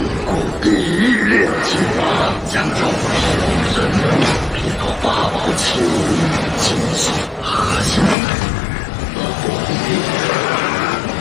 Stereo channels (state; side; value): drops out; right; at 8.2 s